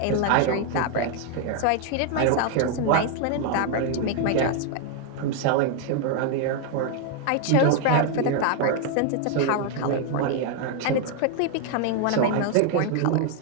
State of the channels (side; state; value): both; different; correlation 0.01